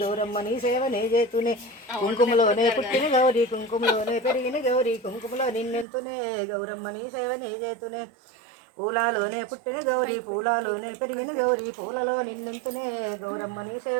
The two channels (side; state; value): left; drops out; at 5.9 s